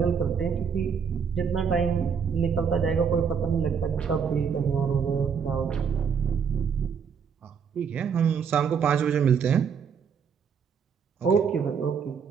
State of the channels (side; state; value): left; quieter; 6.6 dB